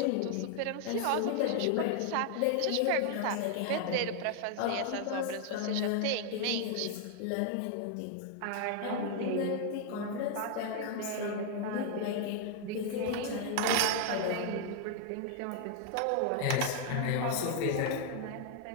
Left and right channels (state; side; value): different; both; correlation 0.00